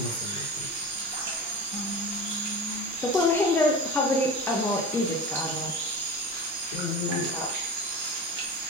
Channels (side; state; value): both; normal; correlation 0.29